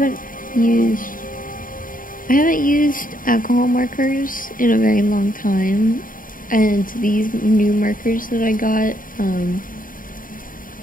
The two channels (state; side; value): late; right; 0.40 ms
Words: used alcohol markers in a very long time, and these new markers that I got,